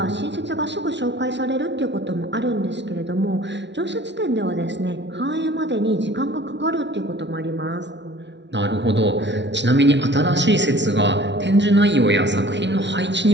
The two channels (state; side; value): late; left; 0.51 ms